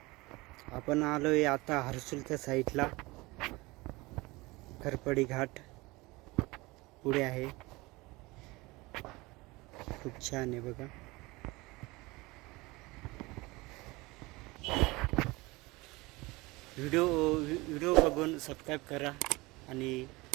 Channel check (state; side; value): quieter; left; 22.6 dB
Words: आपण आलोय आता हर्सुलच्या साईडला. खरपडी घाट पुढे आहे. खूप छान आहे बघा. व्हिडिओ बघून सबस्क्राईब करा आणि